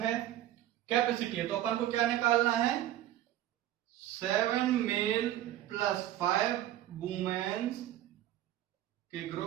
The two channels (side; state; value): left; quieter; 13.1 dB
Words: कैपेसिटी है, तो अपन को क्या निकालना है? 7 मेल प्लस 5 वुमेन्स के